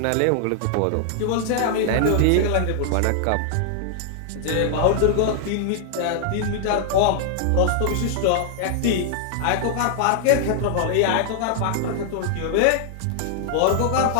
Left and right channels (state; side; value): different; both; correlation 0.00